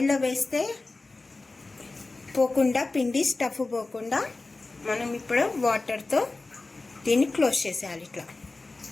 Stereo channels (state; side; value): quieter; right; 3.4 dB